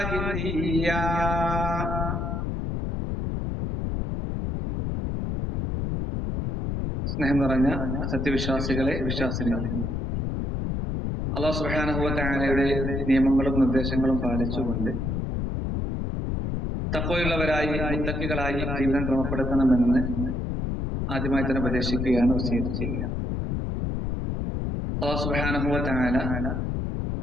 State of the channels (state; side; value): noise; left; rumble, 2 dB below the sound